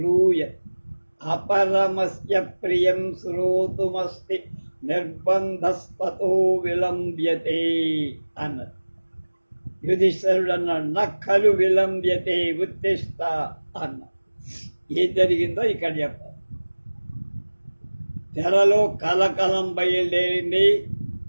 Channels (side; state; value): both; inverted; correlation -1.00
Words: అపరమస్య ప్రియం శ్రోతుమస్తి నిర్బంధస్తతో విలంబ్యతే అన్నది. యుధిష్ఠిరుడు అన్నాడు, నక్కలు విలంబ్యతే ఉత్తిష్ట అన్నాడు. ఏం జరిగిందో ఇక్కడ చెప్పాలి. తెరలో కలకలం బయలుదేరింది.